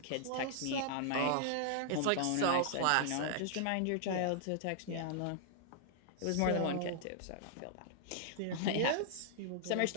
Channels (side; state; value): both; different; correlation -0.01